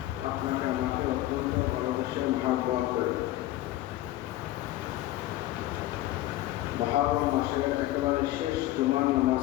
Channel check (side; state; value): right; quieter; 15.6 dB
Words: আপনাকে আমাকে অত্যন্ত ভালোবেসে মহব্বত করে মুহররম মাসের একেবারে শেষ জুমার